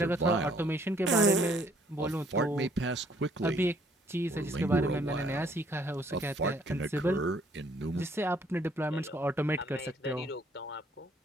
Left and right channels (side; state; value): both; normal; correlation 0.63